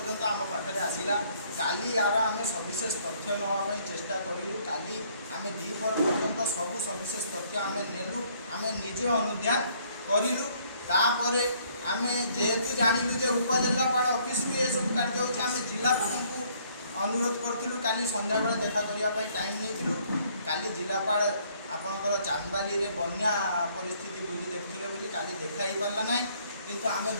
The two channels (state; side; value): inverted; both; correlation -0.64